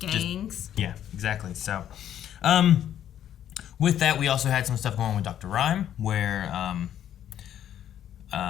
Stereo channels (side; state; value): right; quieter; 10.6 dB